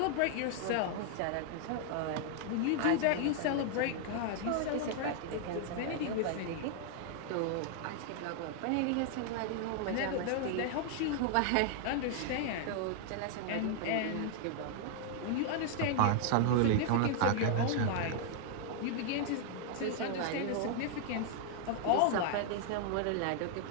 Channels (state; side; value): different; both; correlation 0.00